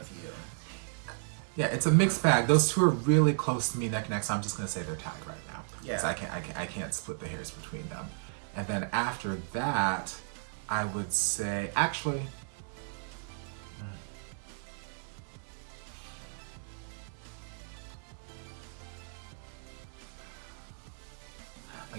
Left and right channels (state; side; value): silent; left; digital silence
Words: You. Yeah, it's a mixed bag. Those two are really close to me neck and neck, so I'm just gonna say they're tied right now. Yeah. So I can't split the hairs between them. And then after that, I would say actually.